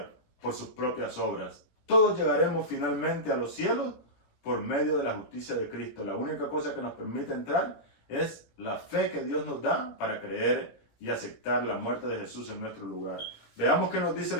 por sus propias obras. Todos llegaremos finalmente a los cielos por medio de la justicia de Cristo. La única cosa que nos permite entrar es la fe que Dios nos da para creer y aceptar la muerte de Jesús en nuestro lugar. Veamos qué nos dice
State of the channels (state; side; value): late; right; 17 ms